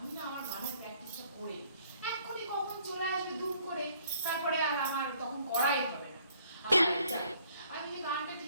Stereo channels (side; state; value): both; inverted; correlation -0.63